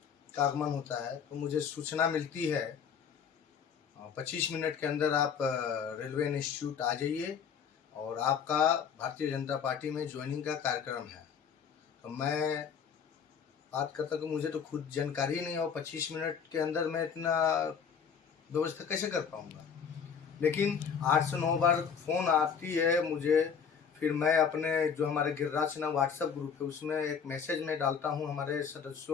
का आगमन होता है, तो मुझे सूचना मिलती है 25 मिनट के अंदर आप रेलवे इंस्टीट्यूट आ जाइए और आपका भारतीय जनता पार्टी में ज्वाइनिंग का कार्यक्रम है। तो मैं बात करता कि मुझे तो खुद जानकारी नहीं और 25 मिनट के अंदर मैं इतना व्यवस्था कैसे कर पाऊँगा। लेकिन 8 से 9 बार फ़ोन आती है मुझे, फिर मैं अपने जो हमारे गिरिराज सिन्हा व्हाट्सएप ग्रुप है उसमें एक मैसेज में डालता हूँ हमारे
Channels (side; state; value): right; quieter; 6.9 dB